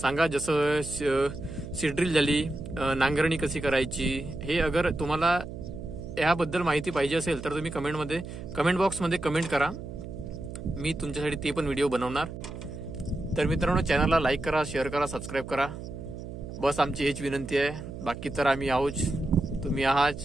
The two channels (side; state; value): right; noise; hum, 10 dB below the sound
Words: सांगा, जसं सीड्रिल झाली, नांगरणी कशी करायची, हे अगर तुम्हाला याबद्दल माहिती पाहिजे असेल तर तुम्ही कमेंट बॉक्समध्ये कमेंट करा. मी तुमच्यासाठी ते पण व्हिडिओ बनवणार. तर मित्रांनो, चॅनलला लाईक करा, शेअर करा, सबस्क्राईब करा. बस आमची हीच विनंती आहे. बाकी तर आम्ही आहोत, तुम्ही आहात.